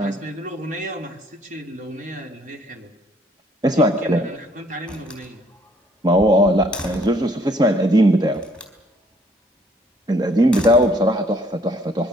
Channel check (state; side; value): normal; both; correlation 0.64